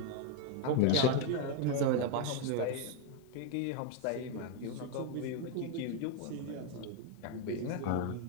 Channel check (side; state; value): both; different; correlation 0.01